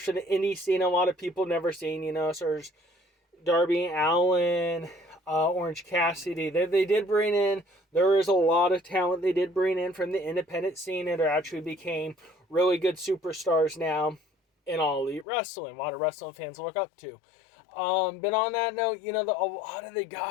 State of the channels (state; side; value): drops out; right; at 15.2 s